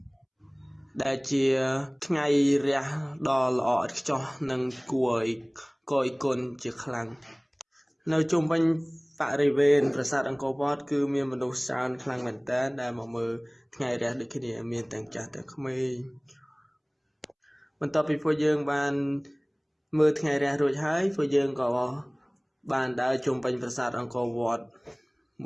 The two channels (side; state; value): both; identical; correlation 1.00